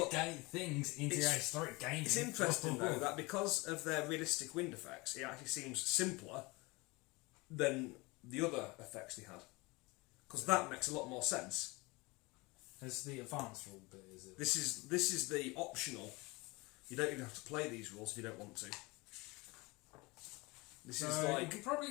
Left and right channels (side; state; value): right; quieter; 24.6 dB